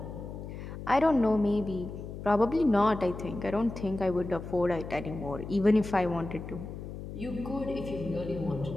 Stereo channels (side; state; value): left; noise; hum, 9 dB below the sound